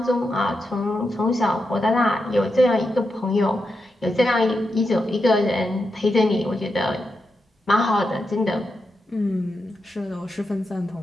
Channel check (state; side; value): normal; both; correlation 0.87